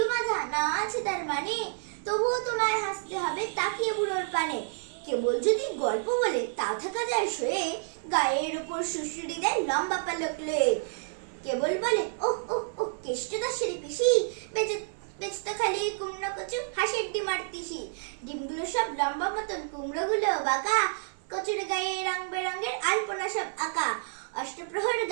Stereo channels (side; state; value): left; silent; 57 dB below the other